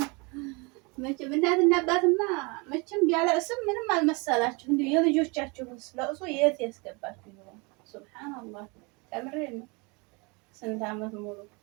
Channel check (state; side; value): quieter; left; 29.2 dB